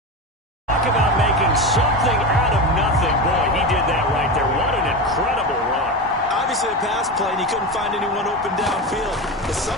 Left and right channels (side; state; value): both; normal; correlation 0.21